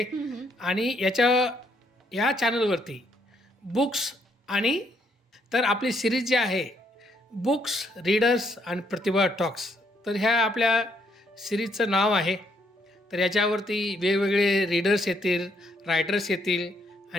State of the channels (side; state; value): both; normal; correlation 0.72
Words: आणि या चॅनलवरती बुक्स आणि तर आपली सिरीज जी आहे बुक्स, रीडर्स आणि प्रतिभा टॉक्स, तर ह्या आपल्या सिरीजचं नाव आहे. तर याच्यावरती वेगवेगळे रीडर्स येतील, रायटर्स येतील